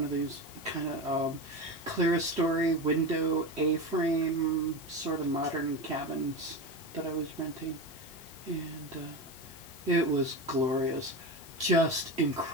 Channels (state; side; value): normal; both; correlation 0.22